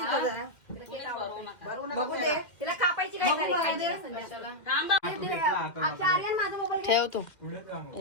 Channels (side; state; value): right; late; 2.1 ms